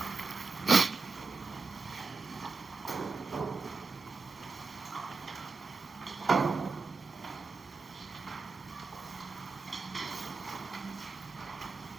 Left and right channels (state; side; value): quieter; left; 4.2 dB